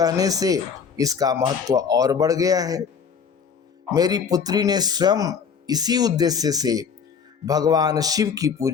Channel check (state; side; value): quieter; right; 6.4 dB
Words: से इसका महत्व और बढ़ गया है। मेरी पुत्री ने स्वयं इसी उद्देश्य से भगवान शिव की